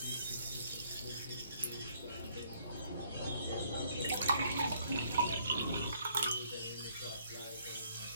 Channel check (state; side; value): inverted; both; correlation -0.65